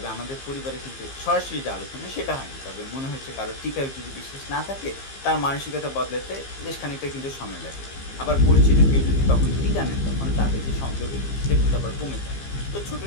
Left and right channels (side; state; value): right; late; 15 ms